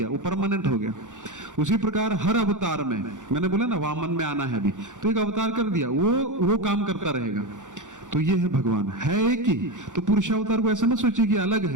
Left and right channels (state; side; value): late; left; 0.86 ms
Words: वो परमानेंट हो गया। उसी प्रकार हर अवतार में, मैंने बोला ना वामन में आना है अभी, तो एक अवतार कर दिया, वो काम करता रहेगा। तो ये है भगवान, है एक ही। तो पुरुषावतार को ऐसा मत सोचिए कि अलग